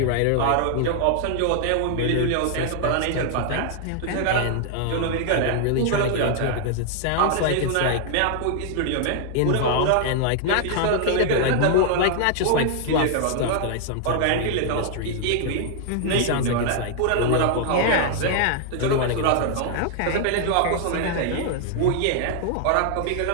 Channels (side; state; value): both; different; correlation 0.00